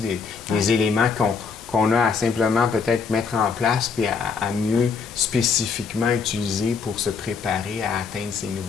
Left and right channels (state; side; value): quieter; right; 5.4 dB